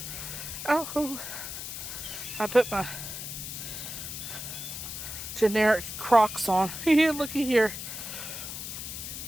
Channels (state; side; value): noise; left; hiss, 7 dB below the sound